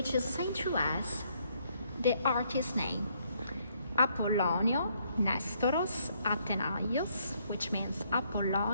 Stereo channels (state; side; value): inverted; both; correlation -0.70